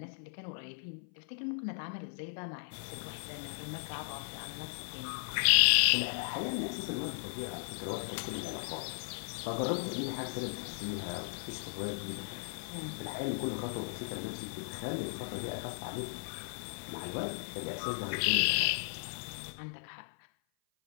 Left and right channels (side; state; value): right; silent; 54 dB below the other